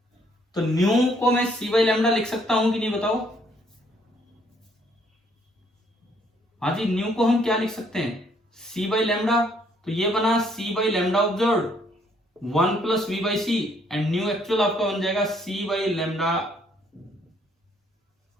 तो न्यू को मैं सी बाई लैम्डा लिख सकता हूं कि नहीं बताओ? हाँ जी, न्यू को हम क्या लिख सकते हैं, सी बाई लैम्डा। तो ये बना c by lambda observe 1 plus v by c, and nu actual आपका बन जाएगा सी बाई लैम्डा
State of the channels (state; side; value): normal; both; correlation 0.66